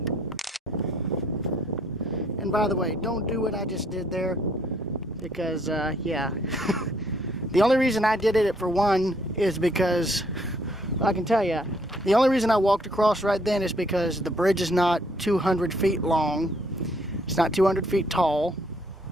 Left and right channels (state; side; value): normal; both; correlation 0.66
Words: And by the way, don't do what I just did there, because, yeah. The only reason I did it, for one, is because, I can tell you, the only reason I walked across right then is because the bridge is not 200 feet long. It's not 200 feet tall.